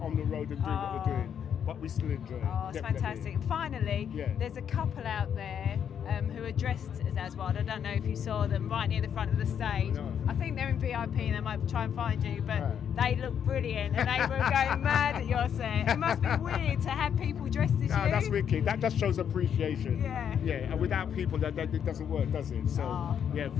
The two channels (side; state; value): right; quieter; 8.4 dB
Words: the road and doing what we're doing. But we still enjoy it. Oh, it's fantastic. And finally, there's a couple out there who are dressed as Aswad. I don't know if you saw them right near the front of the stage. No. I think they're in VIP and they might try and find you, but Right. they look brilliant and they were going mad at your set. It must be weird to have people dressed as No, you. that's wicked. That just shows appreciation. Yeah. Yeah, and without people, that it doesn't work, does it? So, Oh. yeah,